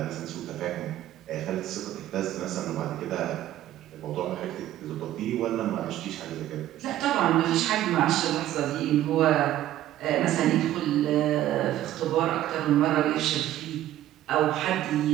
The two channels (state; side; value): quieter; left; 13.3 dB